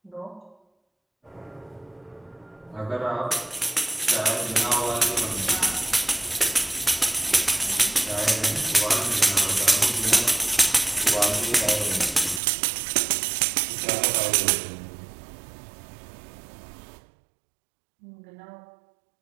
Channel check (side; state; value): left; drops out; at 12.4 s